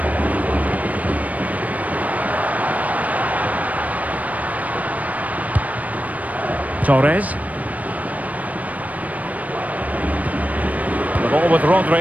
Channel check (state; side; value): late; left; 0.071 ms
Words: Torres. The ball with